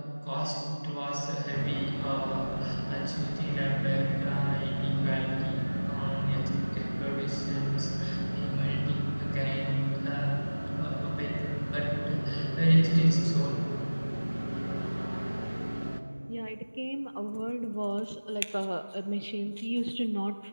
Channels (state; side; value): inverted; both; correlation -1.00